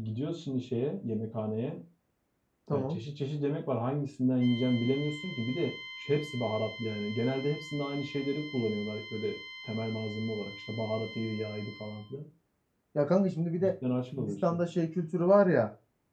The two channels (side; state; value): both; identical; correlation 1.00